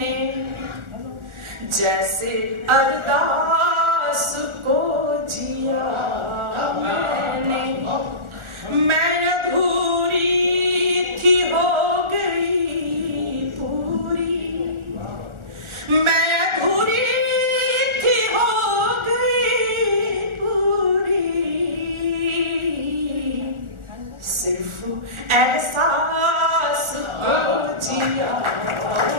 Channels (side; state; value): left; late; 1.4 ms